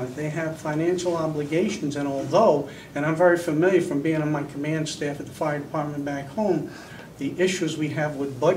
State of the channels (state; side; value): identical; both; correlation 1.00